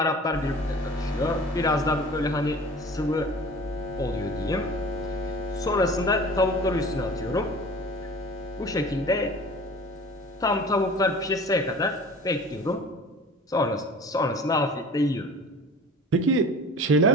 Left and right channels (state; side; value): normal; both; correlation 0.42